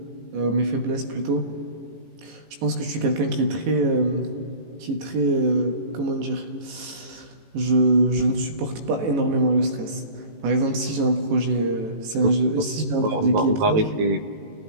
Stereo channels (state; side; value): late; left; 18 ms